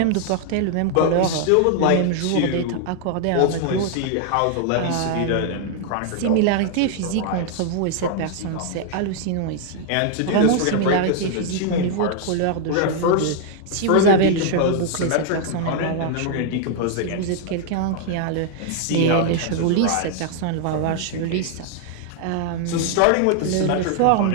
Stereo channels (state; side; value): different; both; correlation 0.00